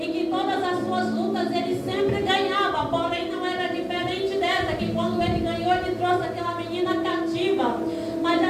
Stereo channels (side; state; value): both; identical; correlation 1.00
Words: que todas as suas lutas ele sempre ganhava. Porém, não era diferente dessa, que quando ele ganhou, ele trouxe aquela menina cativa. Mas